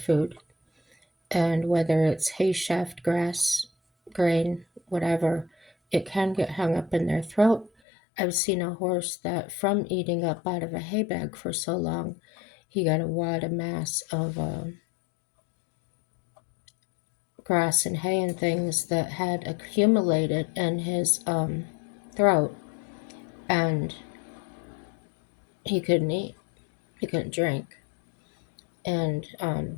and whether it's hay shaft, grass, grain, whatever, it can get hung up in their throat. I've seen a horse that, from eating up out of a hay bag for so long, he got a wad of mass of grass and hay and things that had accumulated in his throat, and he couldn't eat, he couldn't drink, and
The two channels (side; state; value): right; drops out; at 7.7 s